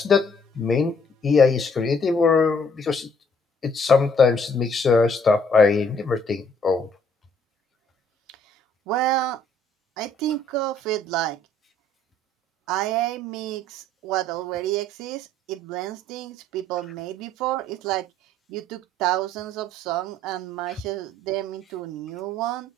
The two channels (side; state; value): both; normal; correlation 0.63